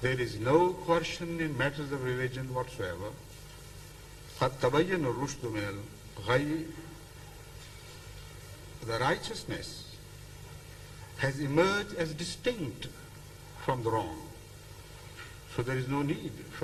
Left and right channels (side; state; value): both; identical; correlation 1.00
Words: is no coercion in matters of religion whatsoever. قَدْ تَبَيَّنَ الرُّشْدُ مِنَ الْغَيِّ, the righteousness has emerged as distinct from the wrong. So there is no need